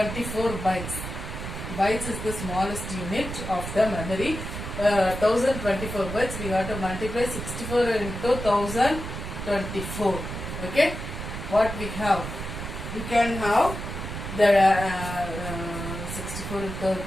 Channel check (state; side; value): noise; right; rumble, 7 dB below the sound